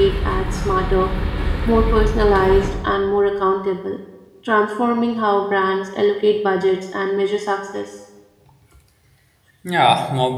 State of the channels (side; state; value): both; identical; correlation 1.00